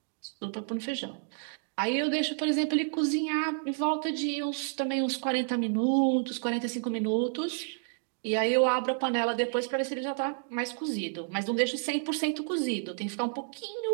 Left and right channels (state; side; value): silent; left; digital silence